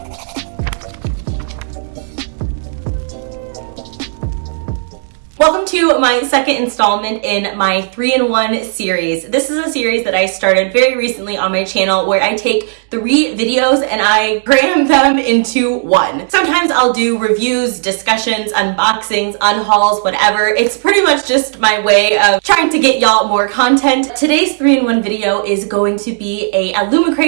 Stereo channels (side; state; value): left; silent; 71 dB below the other